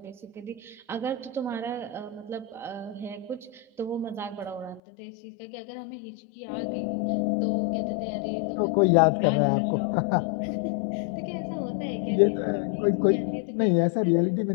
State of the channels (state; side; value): drops out; right; at 4.8 s